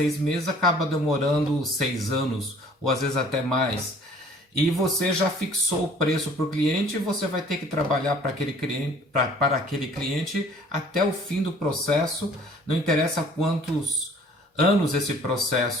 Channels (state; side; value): normal; both; correlation 0.53